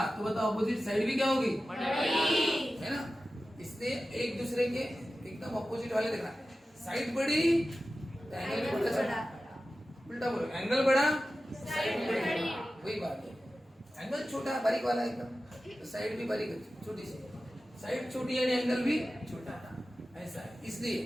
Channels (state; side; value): normal; both; correlation 0.94